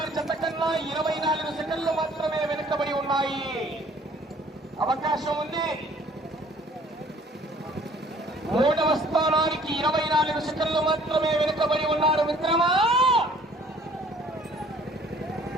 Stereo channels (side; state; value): both; normal; correlation 0.56